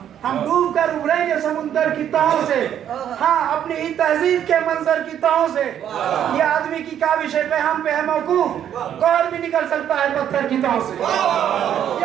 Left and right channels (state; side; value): quieter; left; 9.9 dB